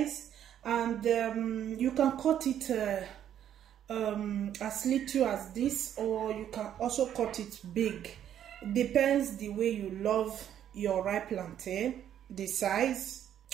and you can cut it as little as this, or you can also cut it big. Depends the way you love your ripe plantain, the size.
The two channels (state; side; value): quieter; left; 10.2 dB